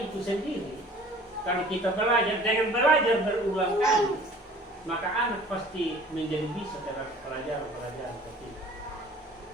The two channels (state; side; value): normal; both; correlation 0.48